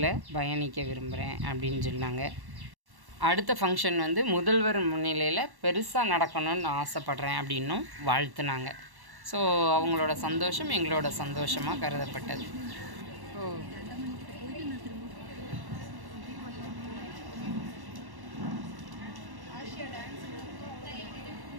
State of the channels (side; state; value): left; late; 1.1 ms